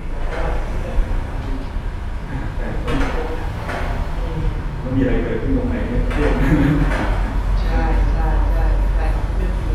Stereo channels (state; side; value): identical; both; correlation 1.00